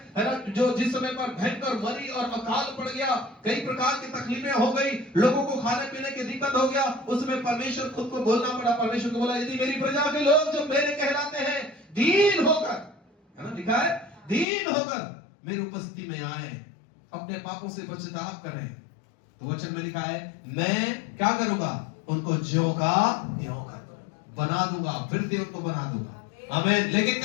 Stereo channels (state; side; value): drops out; right; at 14.5 s